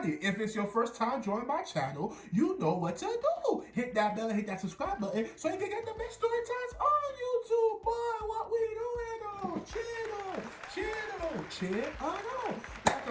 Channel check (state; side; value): identical; both; correlation 1.00